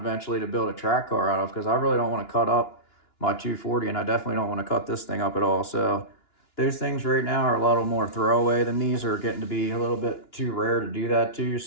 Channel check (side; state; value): right; late; 2.9 ms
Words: to build a track car out of, because I really don't want to cut up my 240, and I definitely don't want to cut this thing up at all. So those things right now are a little more throwaway than these, are getting to be a little bit too rare to do that too.